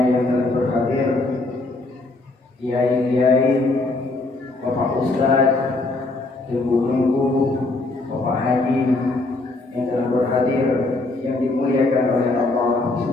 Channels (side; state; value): right; quieter; 3.1 dB